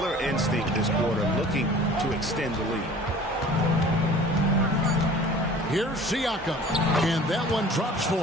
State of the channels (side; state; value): both; normal; correlation 0.46